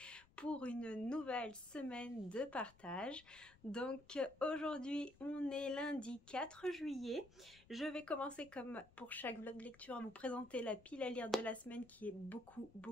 pour une nouvelle semaine de partage. Donc aujourd'hui, on est lundi 4 juillet. Je vais commencer comme pour chaque vlog lecture à vous présenter la pile à lire de la semaine qui est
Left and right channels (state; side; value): noise; left; rumble, 25 dB below the sound